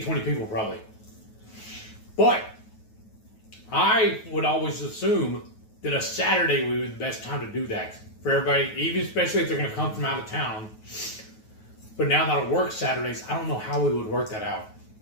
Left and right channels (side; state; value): right; late; 9.3 ms